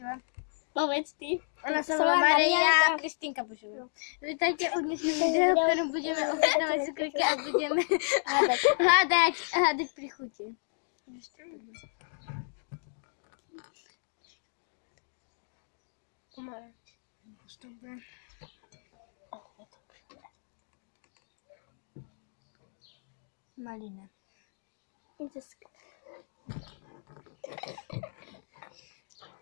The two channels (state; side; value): silent; right; digital silence